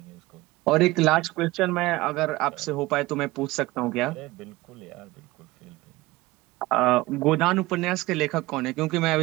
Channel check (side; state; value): left; quieter; 19.9 dB